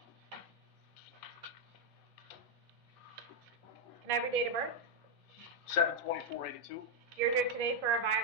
Can I have your date of birth? 7/24/82. You're here today for a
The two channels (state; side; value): normal; both; correlation 0.01